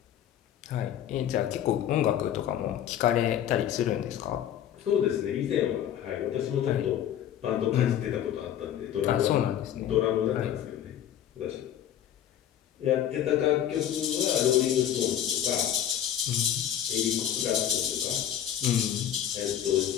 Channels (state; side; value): quieter; right; 10.4 dB